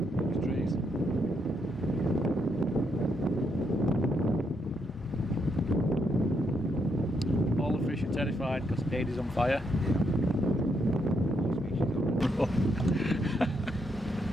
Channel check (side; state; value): both; normal; correlation 0.77